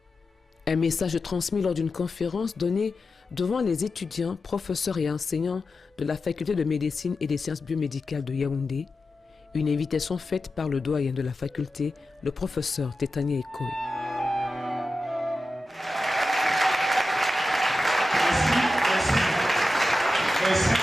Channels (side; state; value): both; normal; correlation 0.92